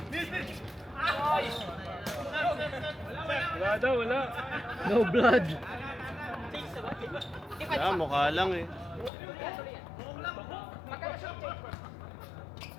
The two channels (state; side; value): drops out; right; at 9.1 s